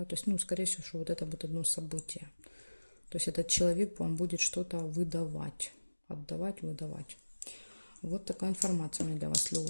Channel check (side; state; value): both; inverted; correlation -1.00